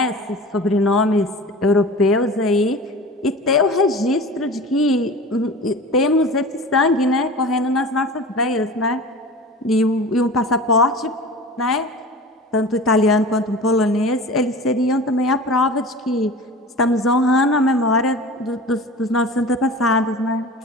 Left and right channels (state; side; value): normal; both; correlation 0.36